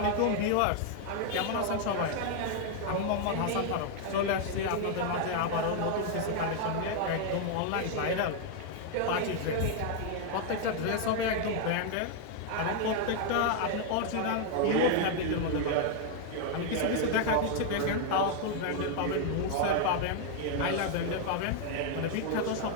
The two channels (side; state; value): both; different; correlation 0.00